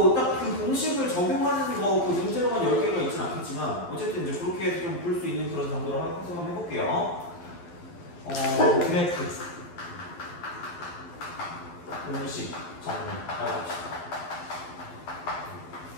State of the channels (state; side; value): late; right; 12 ms